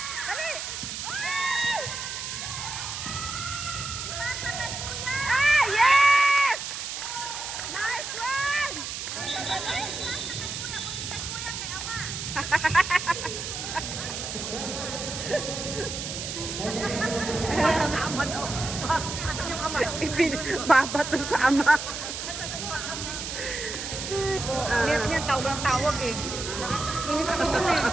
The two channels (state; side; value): noise; right; hiss, 6 dB below the sound